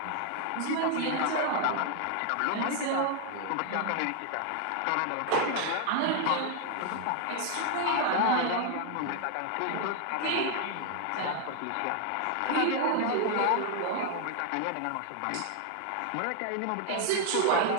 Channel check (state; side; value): different; both; correlation 0.00